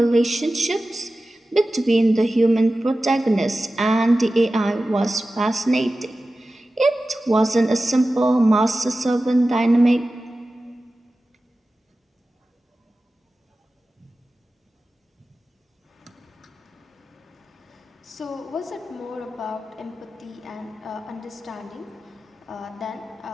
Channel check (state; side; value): normal; both; correlation 0.95